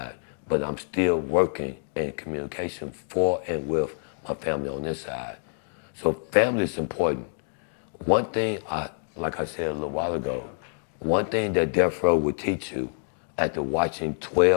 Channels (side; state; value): right; silent; digital silence